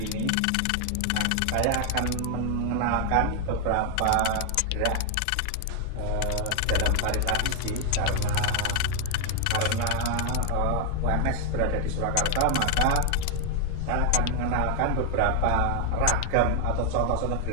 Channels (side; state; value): both; different; correlation 0.00